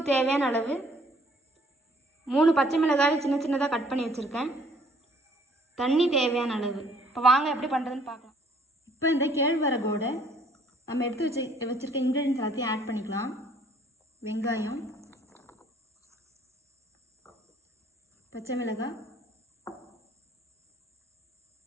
தேவையான அளவு, 3 பச்சை மிளகாய் சின்ன சின்னதா கட் பண்ணி வச்சிருக்கேன். தண்ணி தேவையான அளவு. இப்போ வாங்க எப்படி பண்ணுறதுன்னு பார்க்கலாம். இப்போ இந்த கேழ்வரகோட நம்ம எடுத்து வச்சிருக்க இன்க்ரீடியன்ஸ் எல்லாத்தையும் ஆட் பண்ணிக்கலாம். வெங்காயம், பச்சை மிளகாய்,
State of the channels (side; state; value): both; normal; correlation 0.60